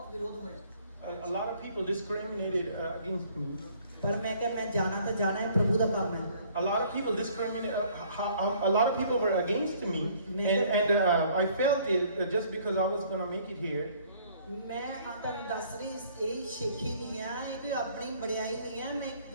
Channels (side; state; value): both; inverted; correlation -0.59